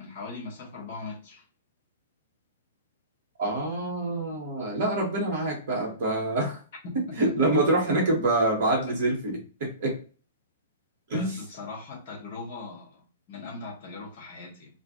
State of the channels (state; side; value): inverted; both; correlation -0.36